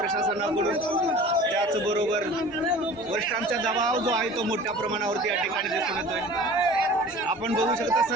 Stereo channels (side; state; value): both; normal; correlation 0.42